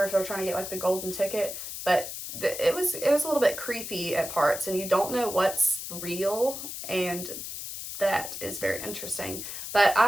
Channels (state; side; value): noise; left; hiss, 8 dB below the sound